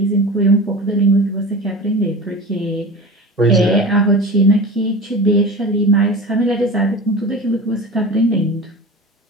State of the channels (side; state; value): both; normal; correlation 0.33